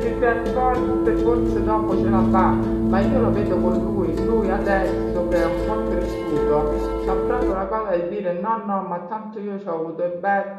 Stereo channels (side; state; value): both; identical; correlation 1.00